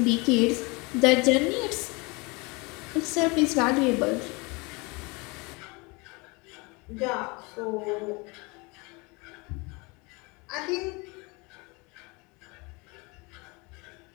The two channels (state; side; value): quieter; right; 27.5 dB